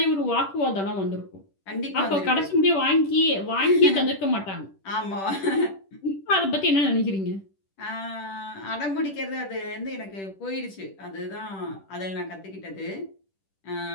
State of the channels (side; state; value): right; late; 10 ms